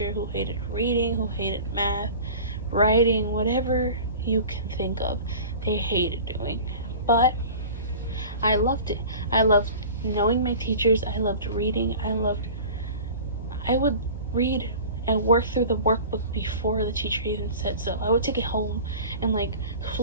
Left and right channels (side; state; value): both; inverted; correlation -0.39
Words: who hated reading, who hated math, writing, whatever you can think of, they hated doing. But I loved it. I loved knowing my teachers. I loved reading. I would read and work through the workbook before the teacher even said so. I would take it home and